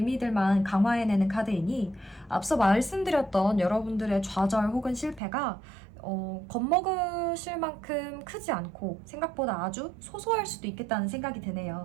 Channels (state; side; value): drops out; left; at 5.2 s